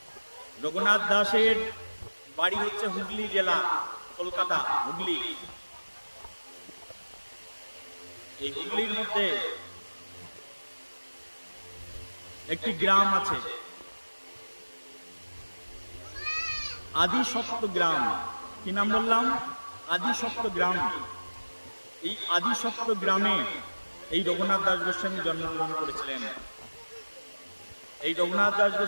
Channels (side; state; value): both; inverted; correlation -1.00